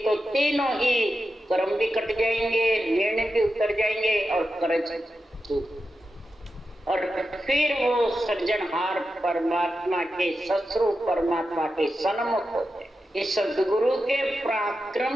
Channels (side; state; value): both; normal; correlation 0.90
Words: तो तीनों ही कर्म भी कट जाएंगे, ऋण भी उतर जाएंगे और कर्ज। और फिर वो सृजनहार परमात्मा के सस्वरूप परमात्मा के सन्मुख होते। इस सदगुरु के